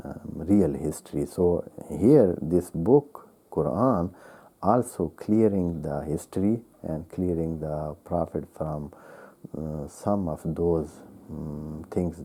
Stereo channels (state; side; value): identical; both; correlation 1.00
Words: real history. So here this book, Quran, also clearing the history and clearing the prophet from some of those things